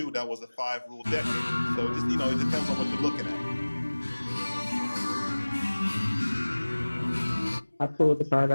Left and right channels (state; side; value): inverted; both; correlation -1.00